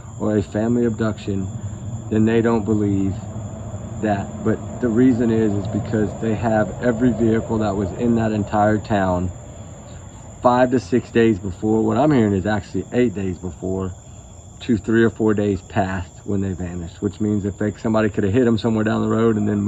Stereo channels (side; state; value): both; identical; correlation 1.00